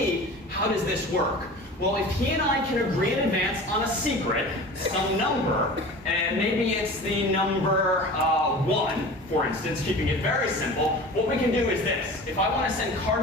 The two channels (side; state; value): both; normal; correlation 0.37